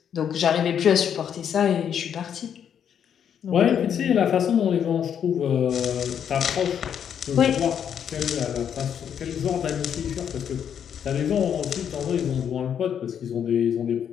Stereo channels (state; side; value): quieter; right; 8.5 dB